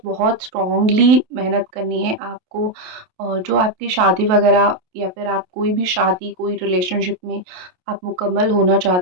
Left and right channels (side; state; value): left; late; 28 ms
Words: बहुत स्ट्रॉन्गली मेहनत करनी है आपको। जो आपकी शादी वगैरह या फिर आप कोई भी शादी, कोई रिलेशनशिप में आप मुकम्मल होना